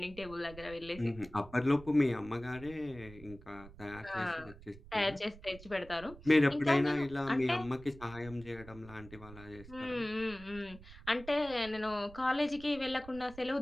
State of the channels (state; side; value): noise; right; rumble, 18 dB below the sound